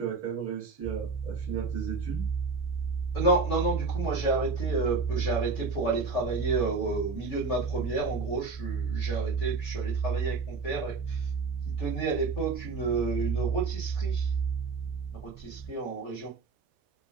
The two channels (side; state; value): left; quieter; 4.3 dB